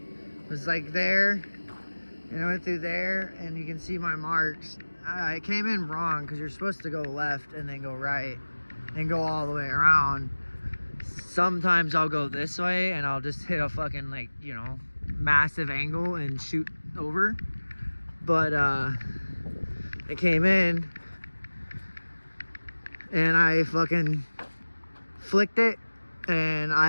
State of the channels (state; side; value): inverted; both; correlation -1.00